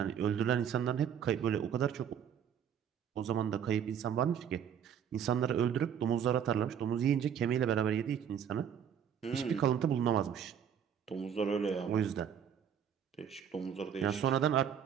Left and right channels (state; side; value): quieter; left; 8.5 dB